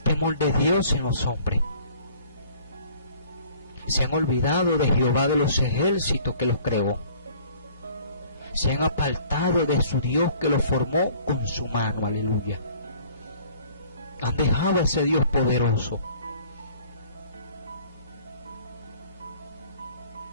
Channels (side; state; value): both; inverted; correlation -0.54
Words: de Dios en los hombres. Se han olvidado de Jehová de los ejércitos que los creó. Se han apartado de su Dios que los formó con su mano. Aleluya. Han dejado a ese Dios poderoso.